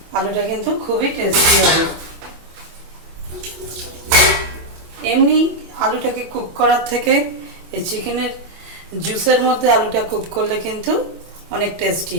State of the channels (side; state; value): left; late; 25 ms